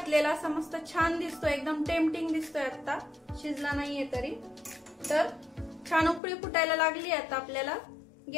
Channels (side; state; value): right; drops out; at 6.2 s